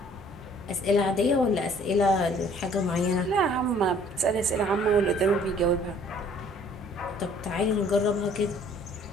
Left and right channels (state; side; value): normal; both; correlation 0.56